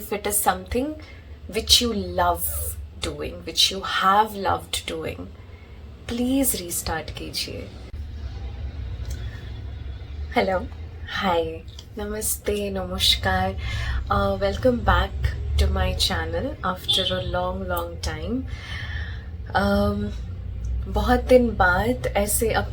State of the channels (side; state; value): both; identical; correlation 1.00